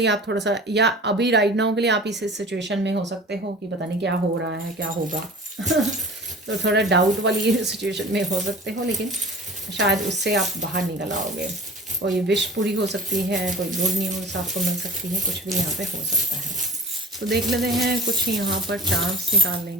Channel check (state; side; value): normal; both; correlation 0.41